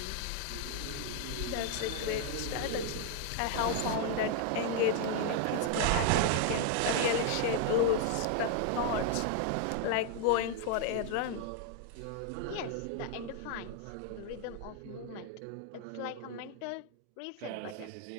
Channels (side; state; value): both; different; correlation 0.00